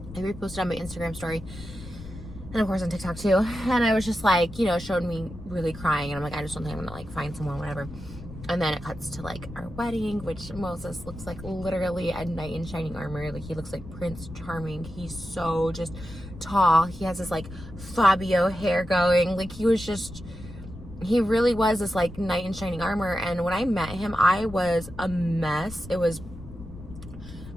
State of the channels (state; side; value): noise; left; rumble, 14 dB below the sound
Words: I reposted on my Instagram story. And of course on TikTok too. And I was just like, you know, showed me really crying. And I'm like, I just don't think I'm going to like find someone, whatever. And then it cuts to like our wedding, which Moses looks like literally a knight in shining armor. Like he looks like Prince Charming. He's so just tall. He has this like Fabio hair going. Like he really was this like knight in shining armor. And when I met him, I was a mess. The